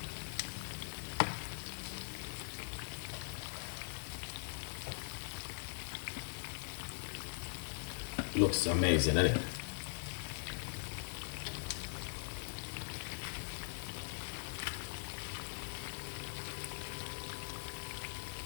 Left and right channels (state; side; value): silent; right; digital silence